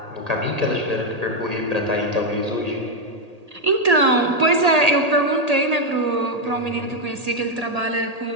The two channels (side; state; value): left; late; 1.8 ms